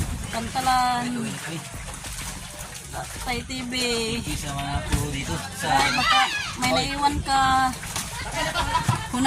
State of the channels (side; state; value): both; identical; correlation 1.00